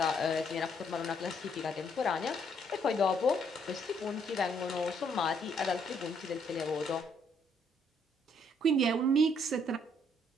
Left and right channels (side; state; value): both; normal; correlation 0.69